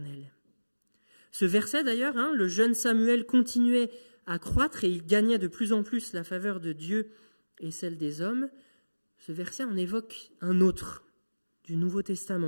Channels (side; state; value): both; inverted; correlation -1.00